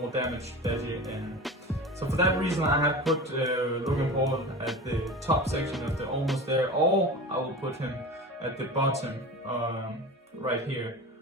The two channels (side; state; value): both; normal; correlation 0.32